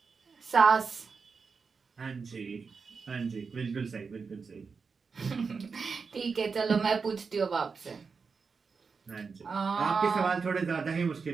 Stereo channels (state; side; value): quieter; left; 5.1 dB